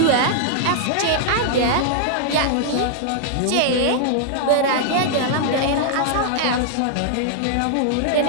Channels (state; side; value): different; both; correlation -0.01